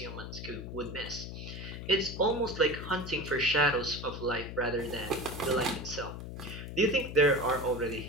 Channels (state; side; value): noise; left; hum, 9 dB below the sound